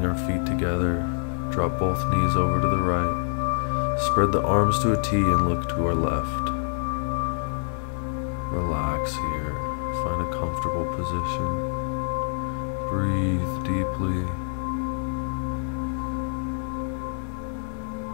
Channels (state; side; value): silent; right; 61 dB below the other